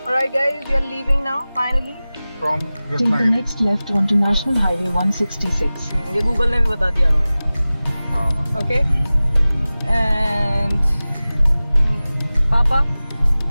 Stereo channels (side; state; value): both; inverted; correlation -0.97